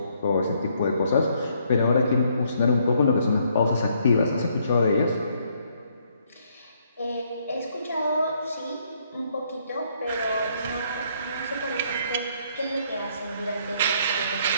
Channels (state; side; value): inverted; both; correlation -0.69